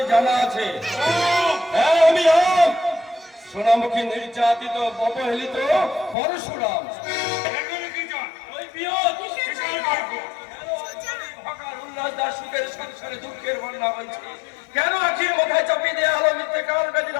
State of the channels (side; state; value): right; drops out; at 6.2 s